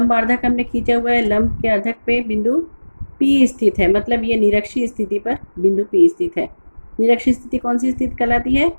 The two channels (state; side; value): inverted; both; correlation -1.00